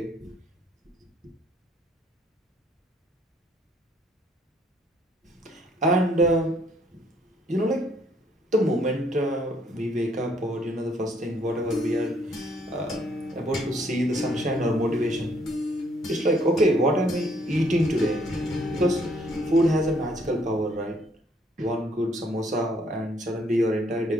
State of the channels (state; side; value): normal; both; correlation 0.66